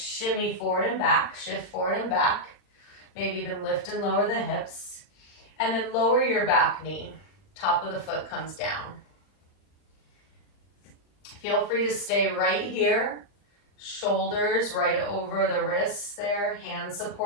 forward and back, shift forward and back, maybe even lift and lower the hips, and then lower your back knee. Top of the foot comes down. Feel free to stay right here, shoulders right over the wrists there, hands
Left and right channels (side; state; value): right; late; 40 ms